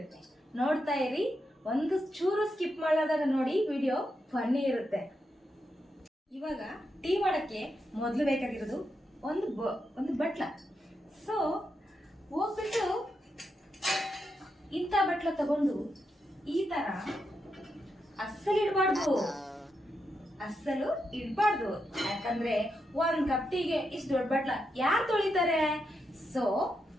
ನೋಡ್ತಾ ಇರಿ, ಒಂದು ಚೂರು ಸ್ಕಿಪ್ ಮಾಡಲಾದಾಗ ನೋಡಿ, ವಿಡಿಯೋ ಫನ್ನಿ ಇರುತ್ತೆ. ಇವಾಗ ಟೀ ಮಾಡಕ್ಕೆ ಮೊದಲು ಬೇಕಾಗಿರೋದು ಒಂದು ಬಟ್ಲ. ಸೊ ಹೋಗ್ಬಿಟ್ಟು ಇಂಥ ಬಟ್ಲ ತಗೊಂಡು ಈ ತರ ಅಸ್ಸಲು ಇಡಬಾರ್ದು, ಯಾಕಂದ್ರೆ 1 ಕಪ್ ಟೀಗೆ ಇಷ್ಟು ದೊಡ್ಡ ಬಟ್ಲ ಯಾರು ತೊಳಿತಾರೆ? ಸೊ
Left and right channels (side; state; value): both; normal; correlation 0.84